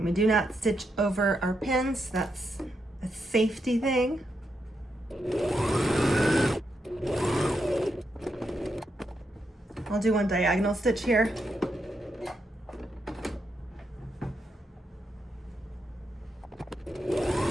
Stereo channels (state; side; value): normal; both; correlation 0.82